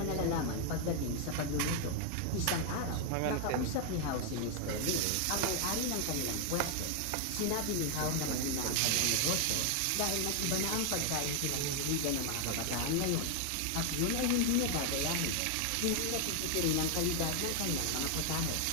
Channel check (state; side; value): different; both; correlation 0.00